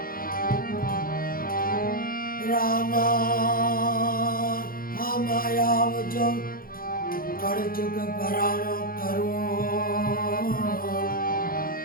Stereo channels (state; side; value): late; right; 0.42 ms